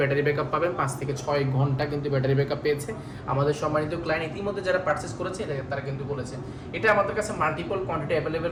ব্যাকআপ পাবেন 5 থেকে 6 ঘন্টা কিন্তু ব্যাটারি ব্যাকআপ পেয়েছে। আমাদের সম্মানিত ক্লায়েন্ট ইতিমধ্যে যারা পারচেস করেছে এটা তারা কিন্তু বলেছে। এটা আমাদের কাছে মাল্টিপল কোয়ান্টিটি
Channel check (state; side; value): identical; both; correlation 1.00